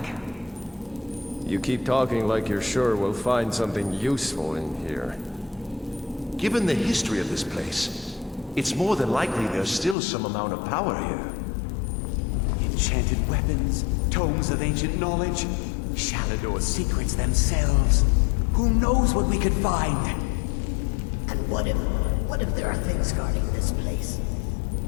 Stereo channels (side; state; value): right; drops out; at 10.0 s